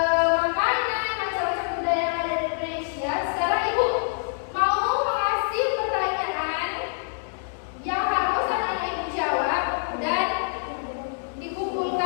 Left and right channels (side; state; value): right; silent; digital silence